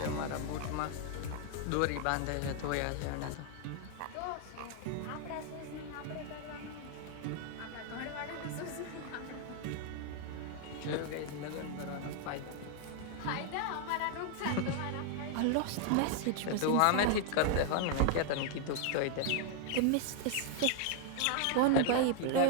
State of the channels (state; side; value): different; both; correlation 0.00